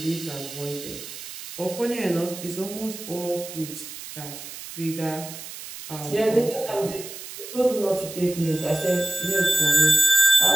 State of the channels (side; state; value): right; noise; hiss, 12 dB below the sound